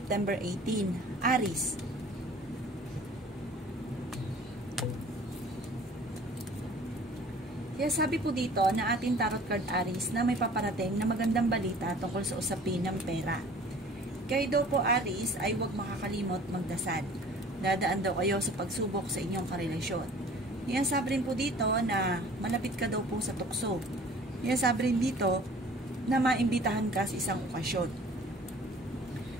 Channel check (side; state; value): both; normal; correlation 0.48